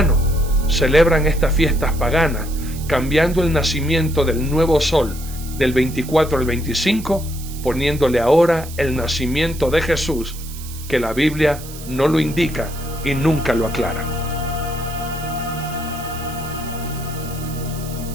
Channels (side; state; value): right; noise; hiss, 15 dB below the sound